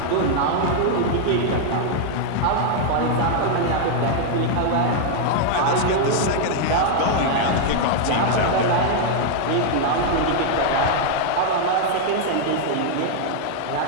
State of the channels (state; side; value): different; both; correlation 0.00